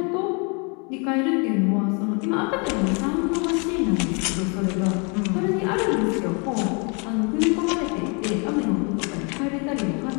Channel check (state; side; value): quieter; right; 34.0 dB